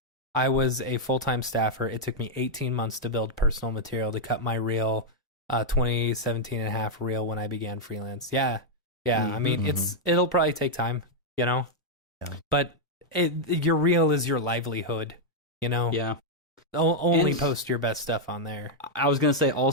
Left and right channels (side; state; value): both; normal; correlation -0.03